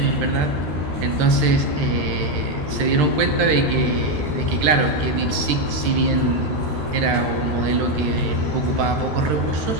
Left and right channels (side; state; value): left; late; 13 ms